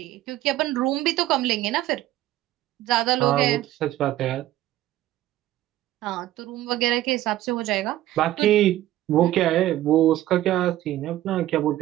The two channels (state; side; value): quieter; left; 14.5 dB